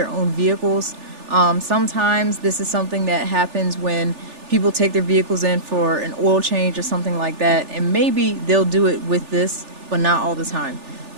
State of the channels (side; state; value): left; late; 3.4 ms